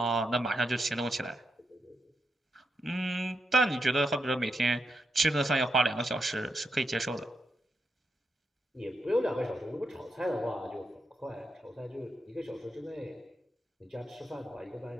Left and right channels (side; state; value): both; normal; correlation 0.84